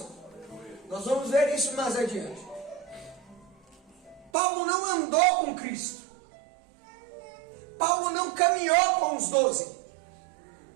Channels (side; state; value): left; drops out; at 4.3 s